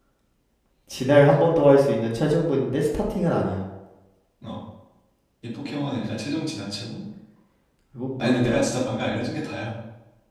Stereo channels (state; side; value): identical; both; correlation 1.00